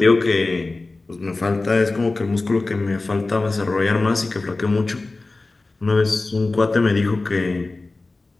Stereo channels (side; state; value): right; quieter; 3.3 dB